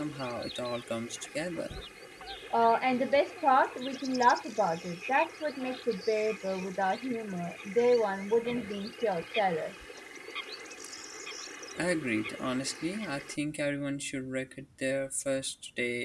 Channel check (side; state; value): both; identical; correlation 1.00